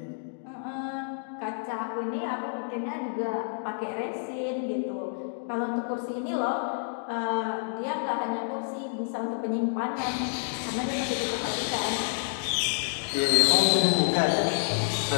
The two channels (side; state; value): right; silent; digital silence